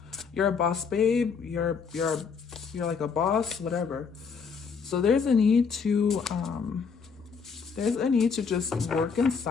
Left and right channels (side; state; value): right; quieter; 5.8 dB